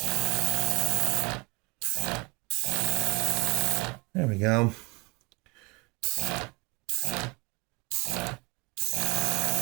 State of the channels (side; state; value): left; quieter; 27.1 dB